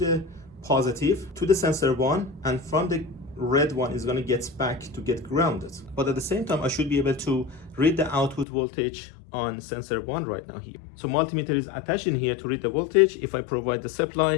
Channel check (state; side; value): drops out; right; at 8.5 s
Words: positive to the sensor 1, and from the red one is going to get back to get grounded. But at the same time, I should be able to read the output voltage on sensor 1 right now here. So multimeter is attached in here to read the voltage if I provide the